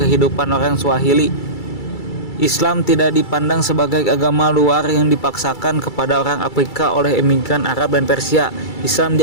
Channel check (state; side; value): late; right; 2.3 ms